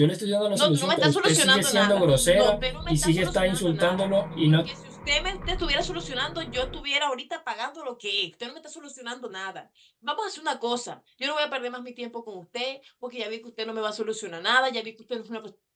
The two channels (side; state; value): both; identical; correlation 1.00